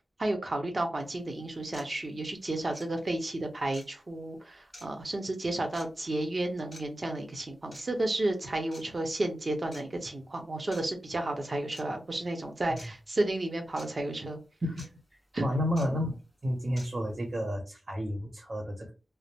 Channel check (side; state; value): both; normal; correlation 0.91